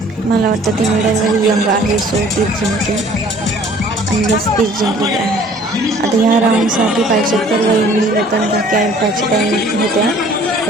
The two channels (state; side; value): normal; both; correlation 0.54